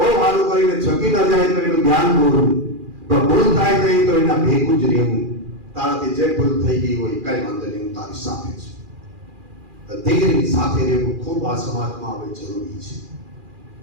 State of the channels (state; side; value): late; left; 2.4 ms